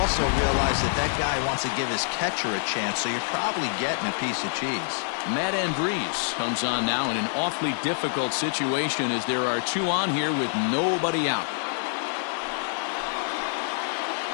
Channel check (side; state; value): right; silent; digital silence